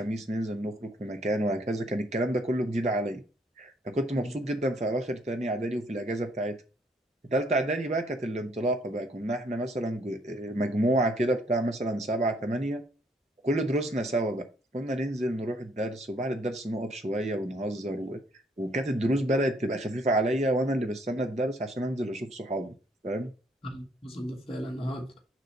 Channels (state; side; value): normal; both; correlation 0.66